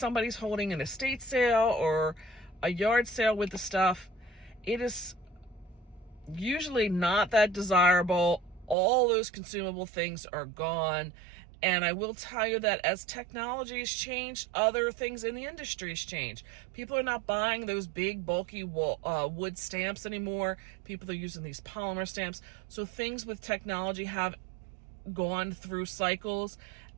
holding an estate sale or a yard sale with the stuff, it is usually not that desirable. All those consumable things are gone. And I will tell you that as technology has changed, other things in the industry has changed. People are not buying those big, bulky wood stamps anymore. People are using these polymer stamps. So things with technology have gone through cycles.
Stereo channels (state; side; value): drops out; left; at 8.8 s